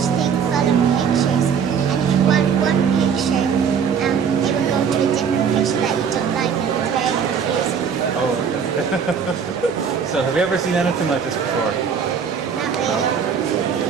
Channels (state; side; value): quieter; left; 6.9 dB